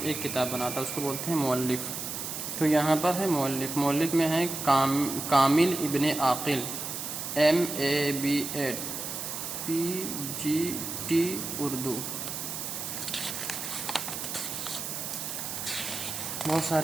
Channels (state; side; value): noise; right; hiss, 5 dB below the sound